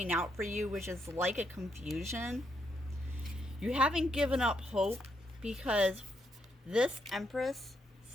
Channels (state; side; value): normal; both; correlation 0.78